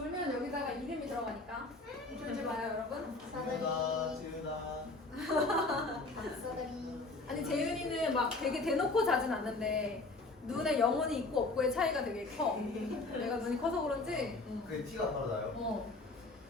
여기다가 이름이 들어가니까. 돌지 마요, 여러분. 지우다. 박사다리. 아니 재윤이는 막 되게 대놓고 자진 않는데 눈에 영혼이 있고 없고의 차이가 되게 커. 내가 눈이 커서 그런지. 그게 티가 바로 나요. 어.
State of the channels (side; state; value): right; quieter; 3.3 dB